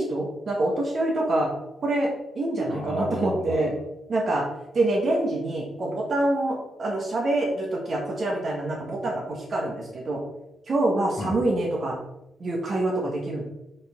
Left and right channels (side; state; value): both; normal; correlation 0.83